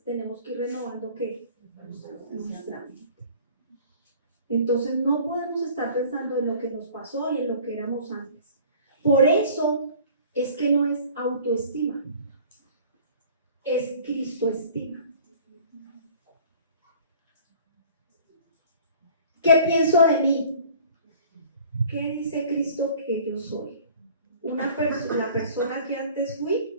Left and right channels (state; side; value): inverted; both; correlation -0.48